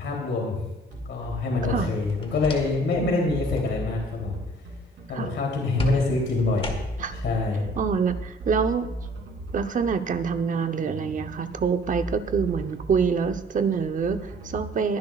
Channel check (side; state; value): both; normal; correlation 0.55